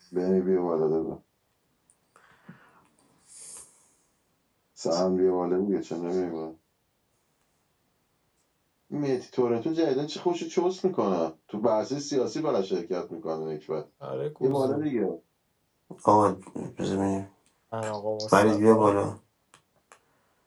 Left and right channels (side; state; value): both; identical; correlation 1.00